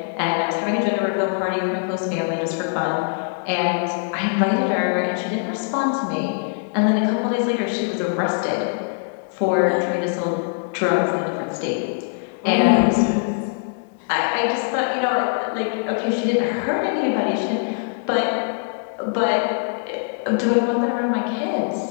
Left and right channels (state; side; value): silent; right; digital silence